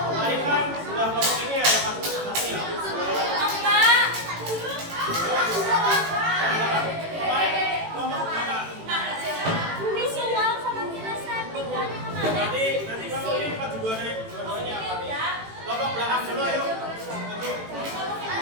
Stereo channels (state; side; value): late; left; 18 ms